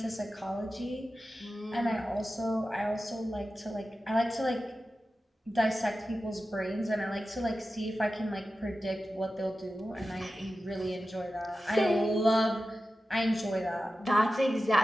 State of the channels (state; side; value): normal; both; correlation 0.93